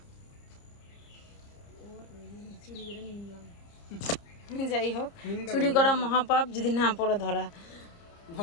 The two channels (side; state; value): right; late; 30 ms